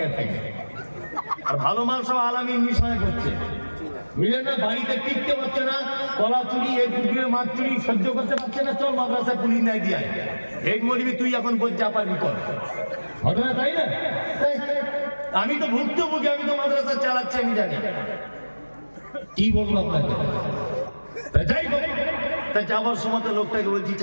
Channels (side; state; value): both; inverted; correlation -1.00